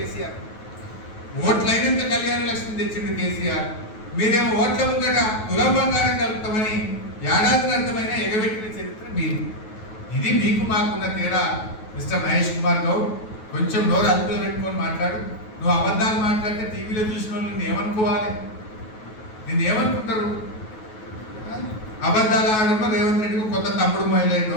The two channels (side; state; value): right; late; 9.3 ms